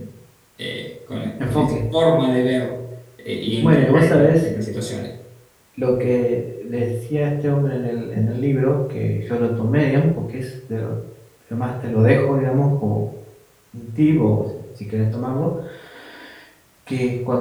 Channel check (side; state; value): both; identical; correlation 1.00